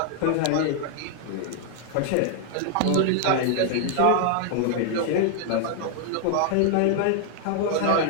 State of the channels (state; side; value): different; both; correlation 0.00